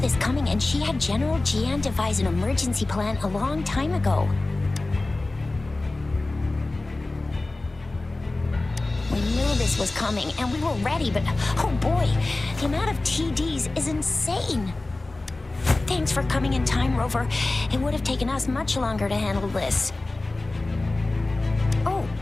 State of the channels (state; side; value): quieter; right; 3.0 dB